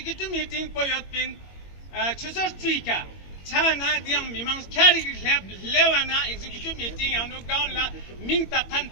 meeting पोयत pin छुसर ट्रीका छाना दियंग मिमांग ख्यारी लेप लेवाना executive meeting यानो गाउला मिंग तखन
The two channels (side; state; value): right; late; 21 ms